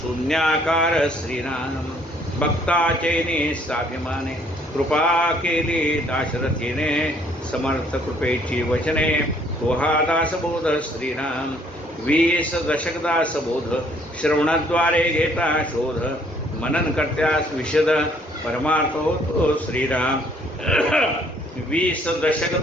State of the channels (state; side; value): normal; both; correlation 0.63